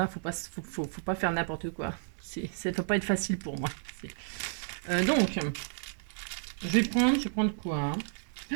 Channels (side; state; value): left; silent; 57 dB below the other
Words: faut pas faire n'importe quoi. Ça ne peut pas être facile pour moi. Donc, je vais prendre quoi hein.